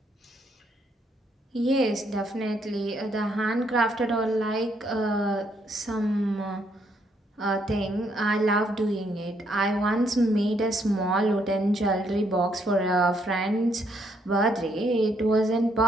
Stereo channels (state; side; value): normal; both; correlation 0.72